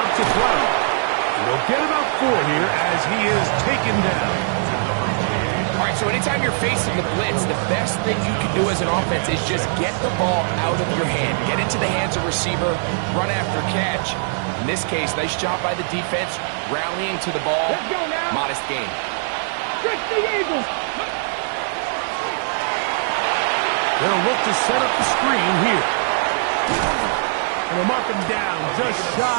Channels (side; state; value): left; silent; digital silence